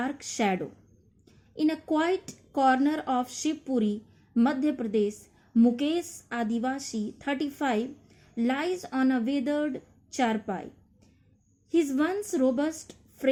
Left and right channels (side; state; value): both; identical; correlation 1.00